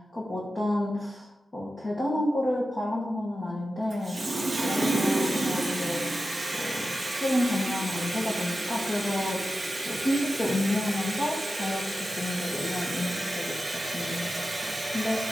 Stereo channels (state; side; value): normal; both; correlation 0.92